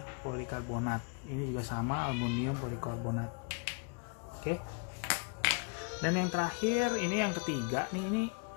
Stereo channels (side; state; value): right; quieter; 35.3 dB